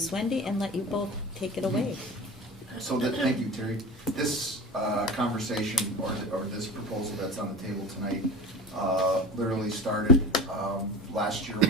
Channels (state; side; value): normal; both; correlation 0.33